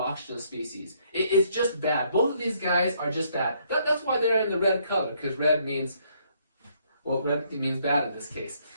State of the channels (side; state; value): both; inverted; correlation -0.69